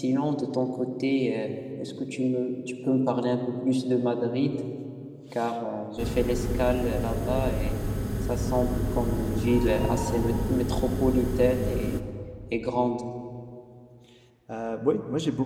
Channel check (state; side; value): identical; both; correlation 1.00